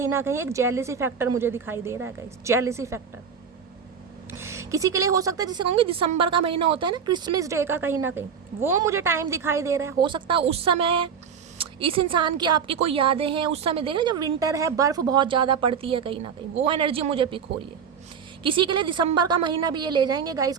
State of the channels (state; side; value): quieter; left; 6.9 dB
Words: ना कहीं एक जेलसी फैक्टर मुझे दिखाई दे रहा है गाइस। जेलसी फैक्टर किसी के लिए हो सकता है, जिसे कहूँगी दिसंबर का महीना होता है ना, क्रिसमस डे का, कहीं ना कहीं वो मुझे टाइम दिखाई दे रहा है। हो सकता है उस समय इस इंसान की आपकी कोई यादें हैं। उस समय देख रहे जब विंटर है, बर्फ़ बहुत ज़्यादा पड़ती है, कहीं ना कहीं वो एनर्जी मुझे पिक हो रही है। किसी के लिए दिसंबर का महीना भी ये ले जाएंगे गाइस